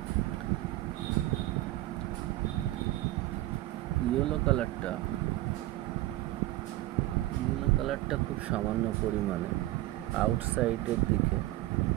ইয়েলো কালারটা খুব সামান্য পরিমাণে আউটসাইডের দিকে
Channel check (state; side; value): quieter; left; 16.8 dB